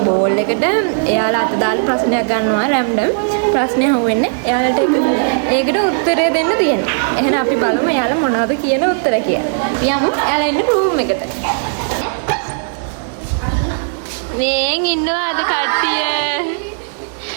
බෝල් එකට එයාලා අත දාලා ප්‍රශ්නයක් ගන්නවා රැන්ඩම්. ප්‍රශ්නේ අහුවෙන්නේ එයාලට ඒකට උත්තරය දෙන්න තියෙනවා. එහෙනම් අපි බලමු එයාලා මොනවද කියන උත්තර කියලා. යමු එයාලා ඉන්න රූම් එකට. මේන් ඉන්නවාද කට්ටිය?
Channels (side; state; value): left; silent; digital silence